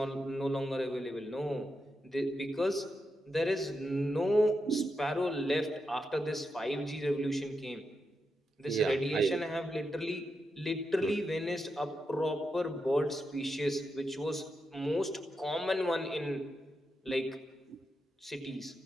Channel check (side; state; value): both; normal; correlation 0.86